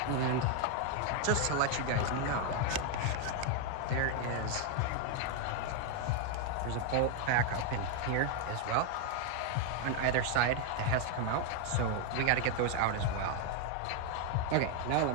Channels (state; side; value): different; both; correlation 0.01